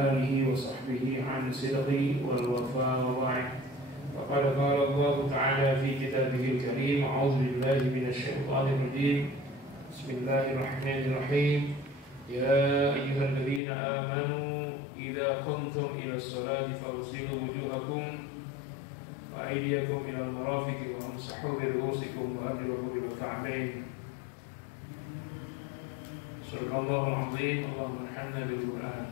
alihi wa sahbihi an sidqi wal wafa wa ba'd. Faqad qala Allah ta'ala fi kitabihil karim, a'udzu billahi minasy syaithanir rajim. Bismillahirrahmanirrahim. Ya ayyuhalladzina amanu idza qumtum ila sholati faghsilu wujuhakum wa aydiyakum ila al-marafiqi wa amsahu bi ru'usikum wa arjulakum ila al-ka'bayn. Subhanallahul azim. Allahumma arhamna bil Qur'an.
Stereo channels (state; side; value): drops out; right; at 13.6 s